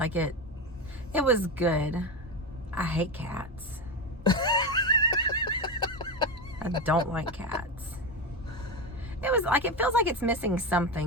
it was good. I hate cats. I don't like cats. It was like, it feels like it's missing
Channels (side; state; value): both; normal; correlation 0.16